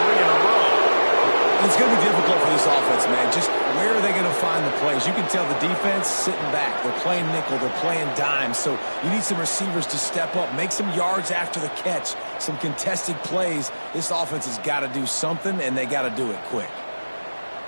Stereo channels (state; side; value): inverted; both; correlation -1.00